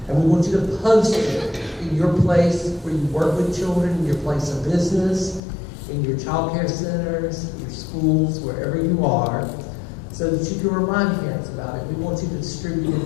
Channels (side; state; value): right; drops out; at 5.4 s